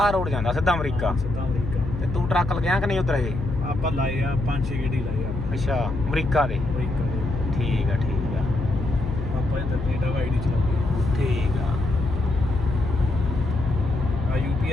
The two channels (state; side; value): noise; left; hum, 6 dB below the sound